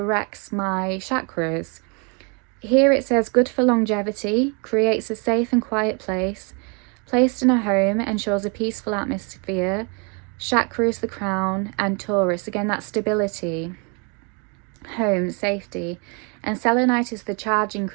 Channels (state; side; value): quieter; left; 34.0 dB